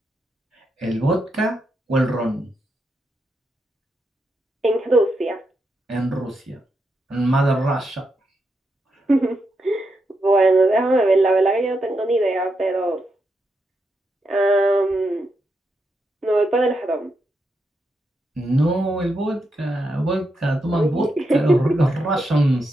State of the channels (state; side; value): normal; both; correlation 0.83